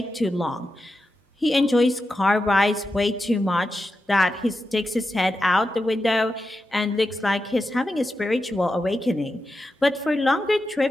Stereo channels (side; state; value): both; normal; correlation 0.89